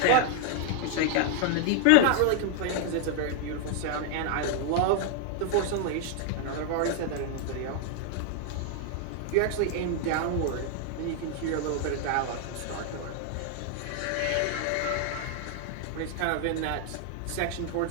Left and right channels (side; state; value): both; different; correlation 0.00